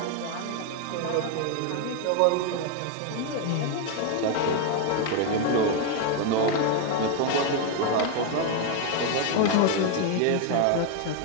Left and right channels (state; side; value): different; both; correlation 0.01